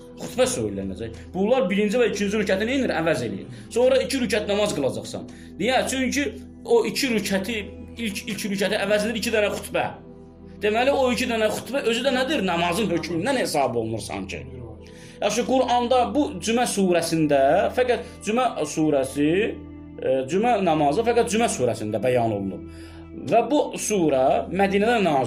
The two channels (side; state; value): both; identical; correlation 1.00